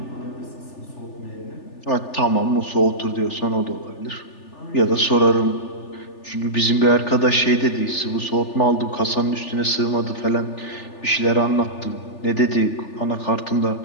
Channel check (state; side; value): late; right; 3.4 ms